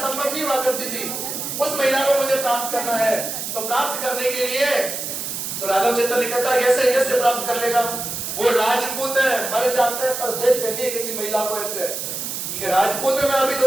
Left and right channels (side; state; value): right; noise; hiss, 5 dB below the sound